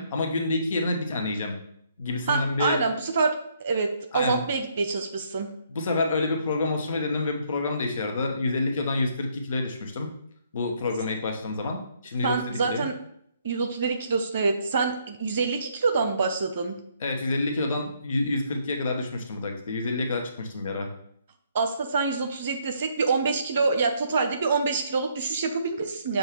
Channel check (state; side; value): inverted; both; correlation -0.69